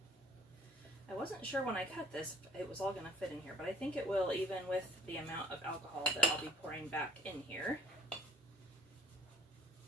I wasn't sure when I cut this it was all going to fit in here, but I think it will, even with the amount of alcohol that I'll be pouring back in here.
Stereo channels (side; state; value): both; normal; correlation 0.55